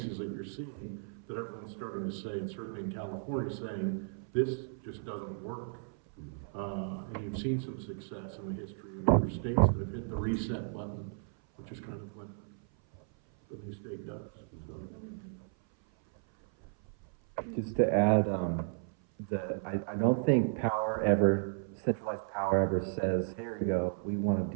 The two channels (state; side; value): silent; left; 55 dB below the other